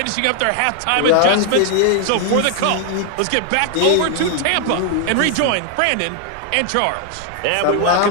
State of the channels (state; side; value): different; both; correlation 0.00